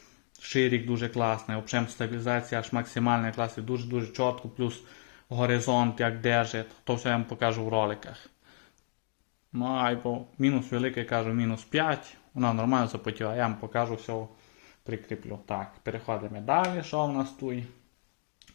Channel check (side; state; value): right; silent; digital silence